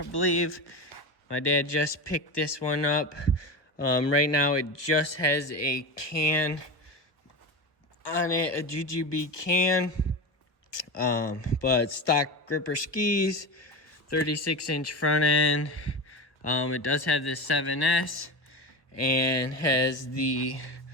believe. My dad just picked this one up. Right now it just has a can on it, a GGB can. But stock gripper skis, 36-inch front end. It does have the 7S and has the,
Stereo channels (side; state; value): right; late; 1.0 ms